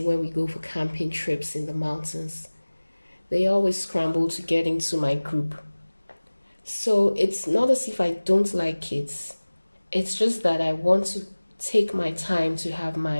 when we go for camping trips in the mountains. They always scramble to get into my group. So it's not as if I don't like kids. It's just that I want to take my time to have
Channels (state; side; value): inverted; both; correlation -1.00